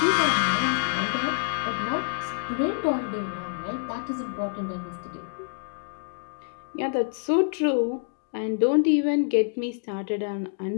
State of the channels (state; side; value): silent; right; 60 dB below the other